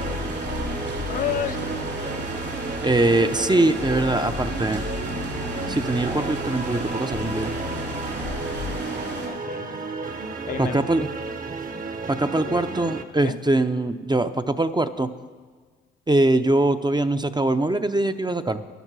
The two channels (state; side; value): normal; both; correlation 0.69